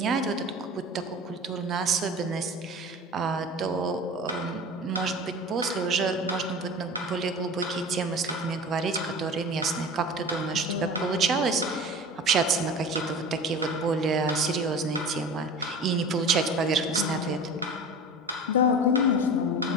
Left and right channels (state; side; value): normal; both; correlation 0.35